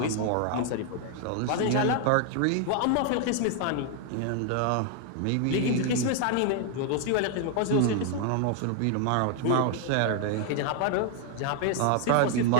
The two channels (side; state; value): both; different; correlation 0.00